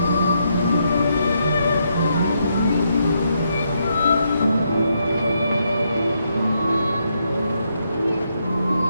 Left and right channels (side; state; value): both; inverted; correlation -0.78